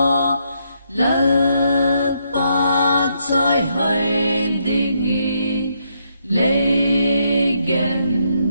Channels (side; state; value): both; inverted; correlation -0.76